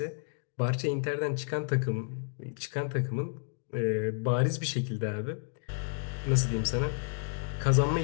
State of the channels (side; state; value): right; silent; 57 dB below the other